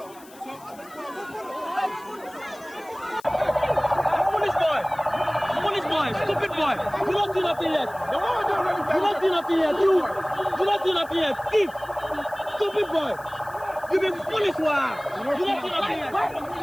Police boy! Stupid boy! You don't do nothing yet! You don't do nothing yet! You don't do nothing yet! Thief! Stupid boy! You been foolish, wow! You don't do nothing yet!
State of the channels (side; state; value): left; noise; hiss, 23 dB below the sound